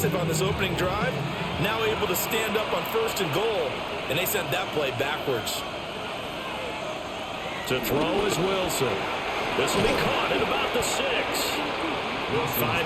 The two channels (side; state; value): both; identical; correlation 1.00